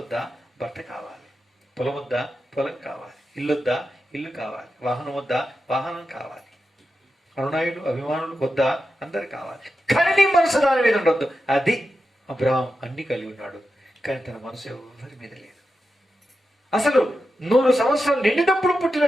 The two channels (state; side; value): normal; both; correlation 0.90